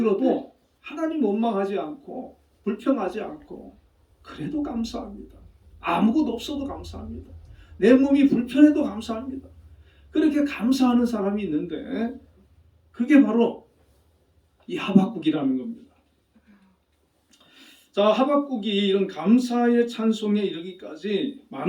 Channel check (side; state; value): both; identical; correlation 1.00